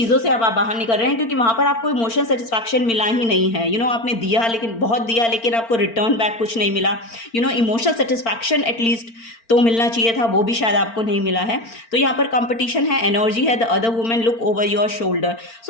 से अब आप बाहर निकल रहे हैं, क्योंकि वहाँ पर आपको इमोशनल सेटिस्फैक्शन मिला ही नहीं है। आपने दिया, लेकिन बहुत दिया, लेकिन आपको रिटर्न बैक कुछ नहीं मिला। इमोशनल सेटिस्फैक्शन एटलीस्ट तो मिलना चाहिए था, वो भी शायद आपको नहीं मिला है। तो यहाँ पर कंपटीशन है, एनर्जी है, the other women look over your shoulder.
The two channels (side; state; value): right; late; 4.4 ms